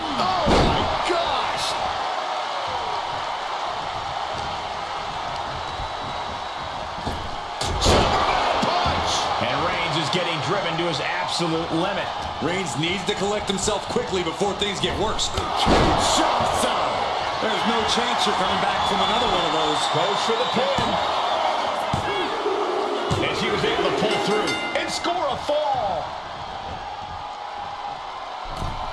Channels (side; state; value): both; identical; correlation 1.00